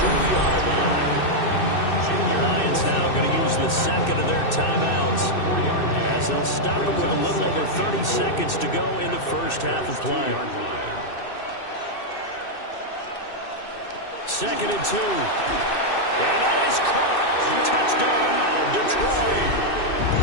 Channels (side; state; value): right; late; 2.6 ms